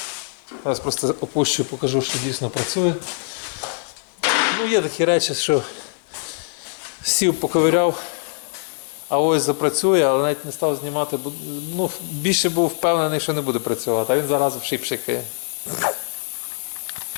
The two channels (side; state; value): right; silent; 64 dB below the other